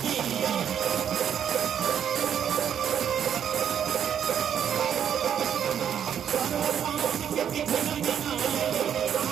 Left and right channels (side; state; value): left; quieter; 8.9 dB